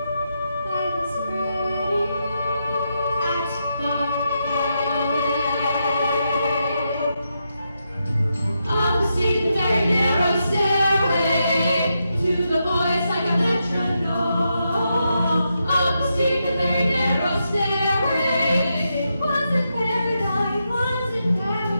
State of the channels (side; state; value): both; inverted; correlation -0.84